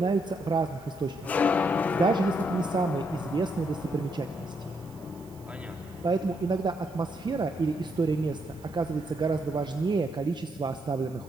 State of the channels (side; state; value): right; noise; hiss, 26 dB below the sound